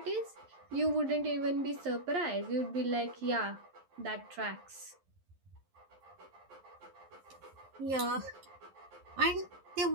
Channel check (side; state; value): left; late; 11 ms